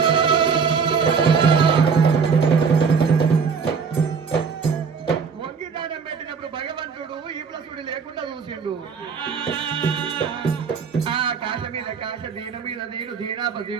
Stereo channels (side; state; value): left; quieter; 5.8 dB